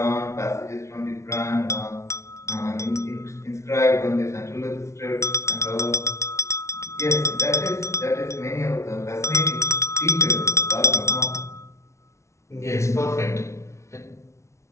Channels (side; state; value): right; late; 0.13 ms